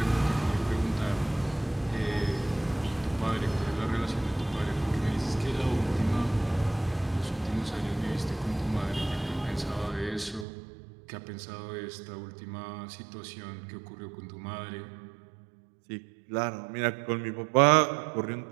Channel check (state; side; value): drops out; left; at 10.5 s